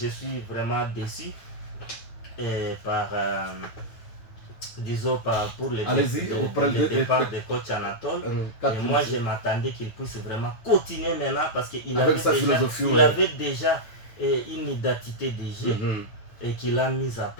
suis vraiment déçu par. Disons pour le départ de coach Anatole. Et moi je m'attendais qu'il puisse vraiment continuer maintenant parce qu'il avait déjà une identité de jeu et qu'il a mise à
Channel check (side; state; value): right; late; 9.2 ms